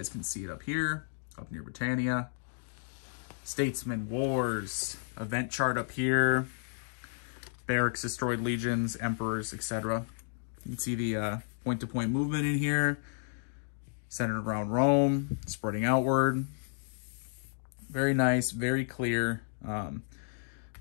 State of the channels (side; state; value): right; silent; digital silence